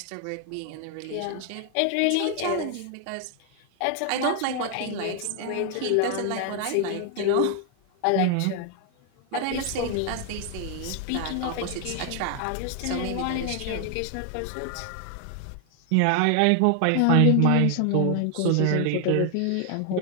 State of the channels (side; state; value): both; different; correlation 0.00